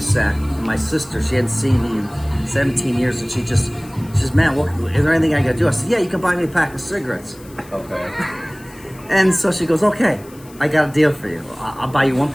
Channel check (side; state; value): left; noise; hiss, 24 dB below the sound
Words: And my sister, she hadn't seen me in 17 years, and she says, man, is there anything I got to do? I said, yeah, you can buy me a pack of cigarettes. Okay. And so she goes, okay, I got a deal for you. I'll buy you 1